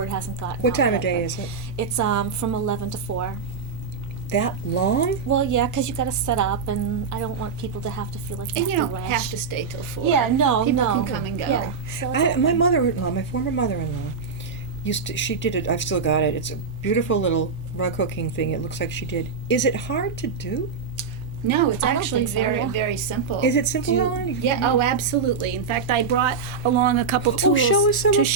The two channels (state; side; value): quieter; left; 5.3 dB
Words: hasn't gotten What out time of yet, day but is it? It's from 11 to 4. That long? Well, yeah, because you got to set up, and I don't want people to have to feel like they And you have don't to rush. have to stay till 4. Yeah, no, People no. can come and go. Yeah. So My mother-in-law, my former mother-in-law, she did it. I've still got it. It's a beautiful little rug hooking thing. It looks like she did. Is it hard to do? No, it's I don't actually think so, very, yeah. very simple. Is it simple, Do- Ellen? Yeah, oh, absolutely. In fact, I brought along a couple tools show us some to of-